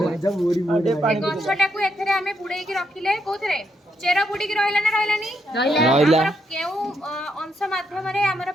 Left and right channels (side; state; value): both; normal; correlation 0.78